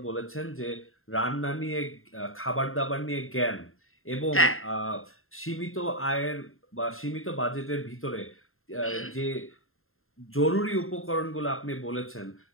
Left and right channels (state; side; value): late; right; 0.61 ms